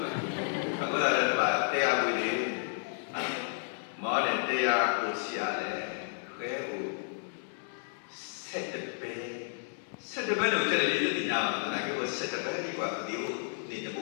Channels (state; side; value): silent; right; digital silence